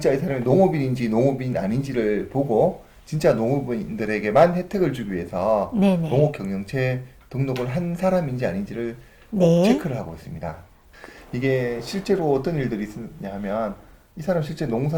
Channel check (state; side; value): identical; both; correlation 1.00